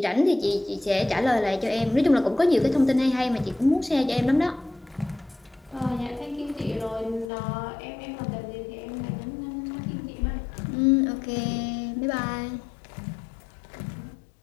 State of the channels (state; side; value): drops out; right; at 7.2 s